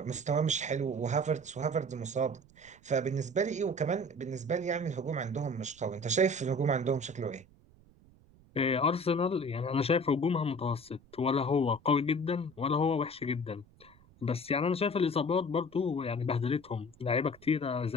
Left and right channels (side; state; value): right; noise; rumble, 27 dB below the sound